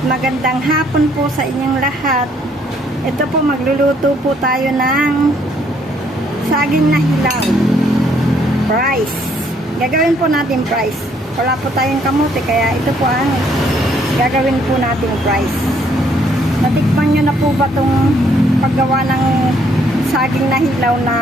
Magandang hapon po sa inyong lahat. Ito po, magluluto po tayo ng saging na hilaw. Rice. Gagawin po natin rice. Wala po tayong kamote, kaya ito po ang gagawin po natin rice. Natikman nyo na po ba itong paggawa ng saging na hilaw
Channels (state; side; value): normal; both; correlation 0.67